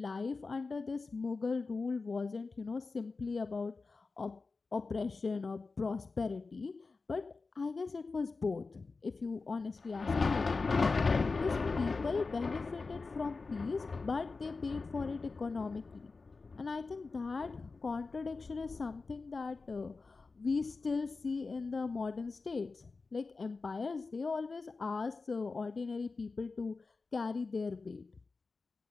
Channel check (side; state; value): right; quieter; 4.1 dB